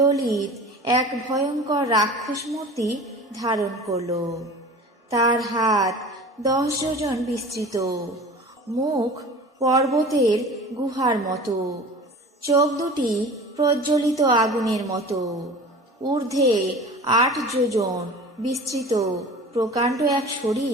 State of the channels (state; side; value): normal; both; correlation 0.39